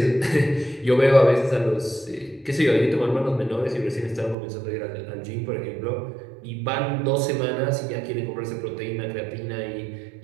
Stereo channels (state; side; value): drops out; left; at 4.4 s